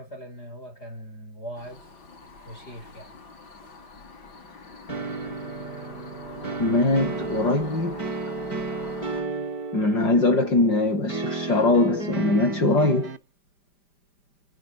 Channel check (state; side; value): late; right; 5.0 ms